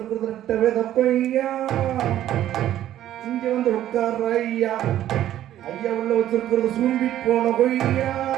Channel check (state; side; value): quieter; left; 12.4 dB